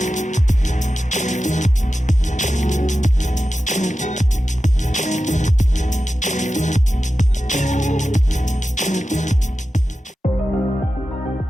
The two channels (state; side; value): normal; both; correlation 0.93